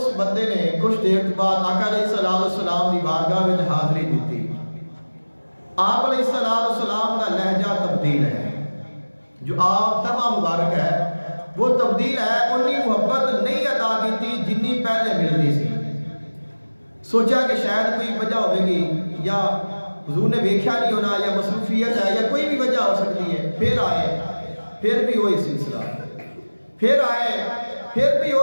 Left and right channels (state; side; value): inverted; both; correlation -1.00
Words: بندے نے کچھ دیر بعد آقا علیہ السلام کی بارگاہ میں حاضری دیتی. آپ علیہ السلام کا لہجہ تبدیل ہے, جو آپ تبع مبارک ہے وہ تبدیل ہے. انہی محبت نہیں عطا کی تھی جنی پہلے ملتی سی. سوچا کہ شاید کوئی وجہ ہوئے گی, یا حضور نے ویکھیا نہیں ہونا, یا مصروفیت ہے, یا کوئی بھی وجہ ہو سکتی ہے. پھر آئے, پھر بھی وہی سلسلہ, پھر آئے, پھر بھی